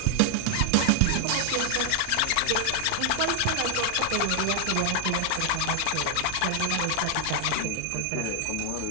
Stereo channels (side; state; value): both; different; correlation 0.00